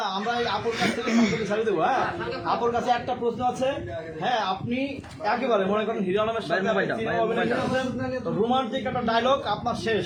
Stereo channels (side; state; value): both; identical; correlation 1.00